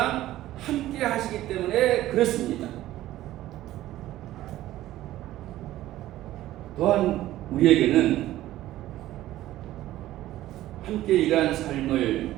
함께 하시기 때문에 그렇습니다. 또한 우리에게는 함께 일한 삶을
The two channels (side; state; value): left; quieter; 14.7 dB